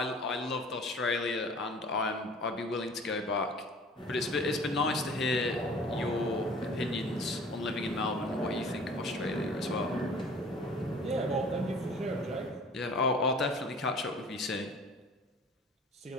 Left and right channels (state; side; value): normal; both; correlation 0.47